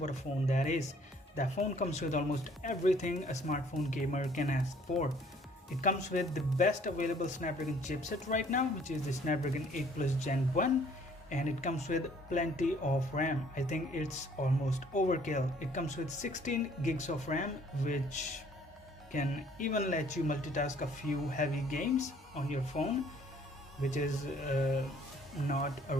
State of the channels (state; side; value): normal; both; correlation 0.59